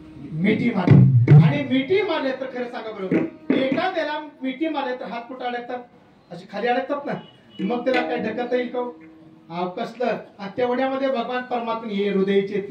मिठी मारली आणि मिठी मारले तर खरं सांगा बरोबर एखाद्याला मिठी मारले तर हात कुठे अडकतात अशी खाली अडकतात ना मग त्याला काय ढकलता येईल का कसलं तेवढ्यामध्ये भगवान परमात्मा हे हृदयचे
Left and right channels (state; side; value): identical; both; correlation 1.00